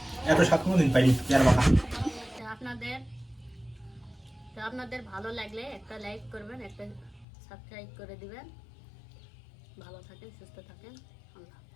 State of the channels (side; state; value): right; drops out; at 7.2 s